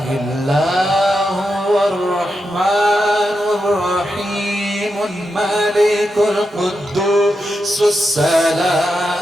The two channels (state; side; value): normal; both; correlation 0.87